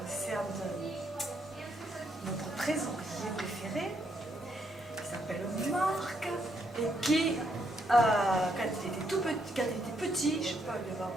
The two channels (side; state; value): both; normal; correlation 0.75